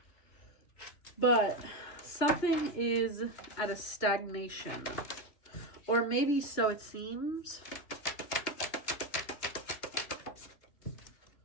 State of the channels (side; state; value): right; late; 2.8 ms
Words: But something is at a stagnation. Or maybe so it seems.